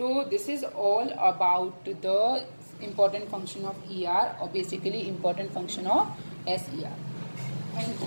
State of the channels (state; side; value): inverted; both; correlation -1.00